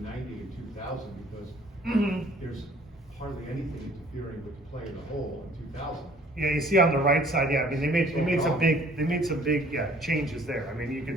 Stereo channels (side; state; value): both; normal; correlation 0.55